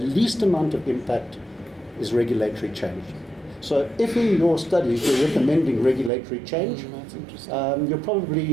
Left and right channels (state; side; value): drops out; left; at 6.1 s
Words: amount of impact is regulatory change. So if in your studies you're recommending regulatory change, you're